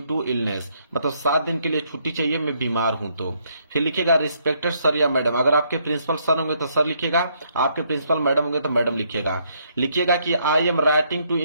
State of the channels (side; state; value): both; inverted; correlation -0.71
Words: to illness, मतलब 7 दिन के लिए छुट्टी चाहिए, मैं बीमार हूं तो। फिर लिखिएगा रिस्पेक्टेड सर या मैडम, अगर आपके प्रिंसिपल सर होंगे तो सर लिखिएगा, आपके प्रिंसिपल मैडम होंगे तो मैडम लिखिएगा। लिखिएगा कि I am writing to